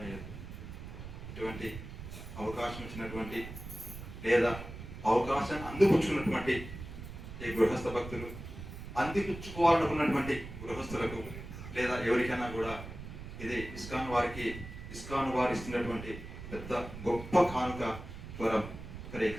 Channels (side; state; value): right; noise; rumble, 11 dB below the sound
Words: ఇటువంటి అవకాశం ఇచ్చినటువంటి లేదా అవకాశాన్ని అందిపుచ్చుకున్నటువంటి ఈ గృహస్థ భక్తులు, అందిపుచ్చుకోవాలనుకున్నటువంటి గృహస్థులకు లేదా ఎవరికైనా కూడా ఇది ఇస్కాన్ వారు ఇస్తున్నటువంటి పెద్ద గొప్ప కానుక వరం. హరే